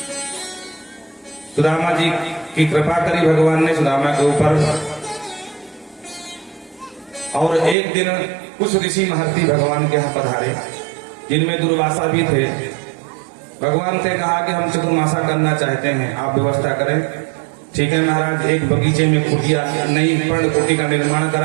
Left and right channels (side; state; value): left; drops out; at 7.8 s